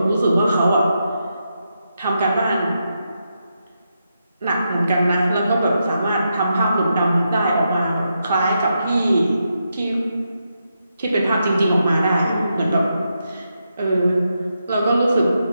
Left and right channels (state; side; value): inverted; both; correlation -0.84